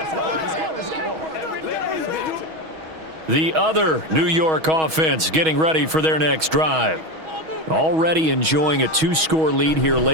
The other New York offense getting ready for their next drive. Already enjoying a 2-score lead here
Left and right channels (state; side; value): late; left; 6.3 ms